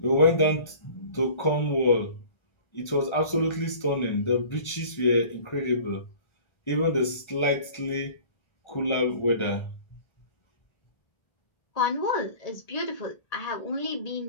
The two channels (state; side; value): late; right; 1.4 ms